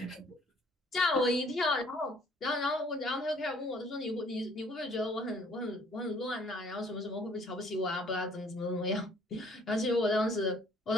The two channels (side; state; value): both; normal; correlation 0.59